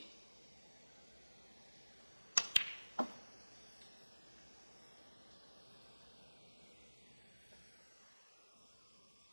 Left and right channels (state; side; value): inverted; both; correlation -1.00